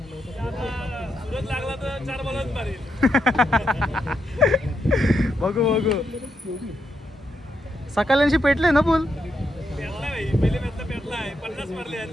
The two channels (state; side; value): normal; both; correlation 0.81